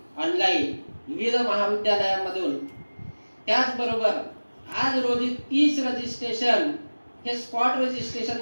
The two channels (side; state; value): both; inverted; correlation -1.00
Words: ऑनलाईन विविध महाविद्यालयांमधून. त्याचबरोबर आज रोजी 30 रजिस्ट्रेशन हे स्पॉट